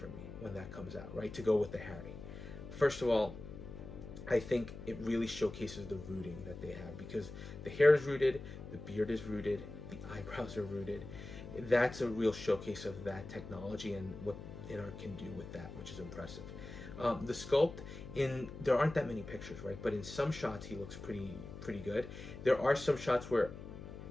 me when that comes out, right? To go with the Harry. First of all, I think it really showcases the rooting that they have, because the hair is rooted, the beard is rooted, the eyebrows are rooted. That's a real showcase of that technology and what Inart can do with that, which is impressive. The sculpt, there aren't that many pictures, right? But in some shots, he looks pretty good. There are some shots where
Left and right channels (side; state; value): left; noise; hum, 11 dB below the sound